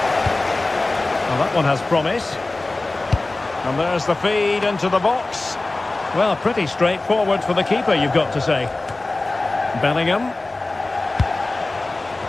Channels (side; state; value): right; quieter; 3.1 dB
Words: Well, that one has promise. And there's the feed into the box. Well, pretty straightforward for the keeper, you've got to say. Bellingham.